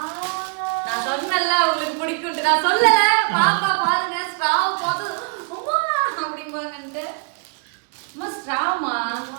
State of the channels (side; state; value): left; quieter; 37.9 dB